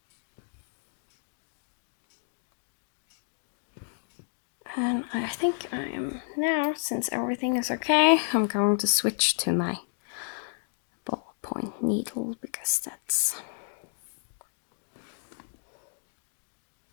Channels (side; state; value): right; silent; digital silence